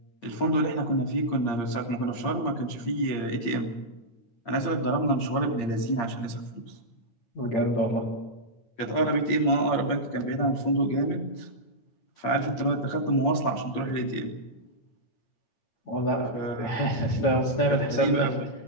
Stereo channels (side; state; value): right; late; 8.7 ms